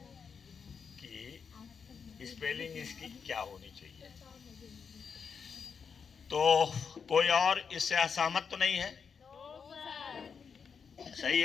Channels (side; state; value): right; quieter; 6.2 dB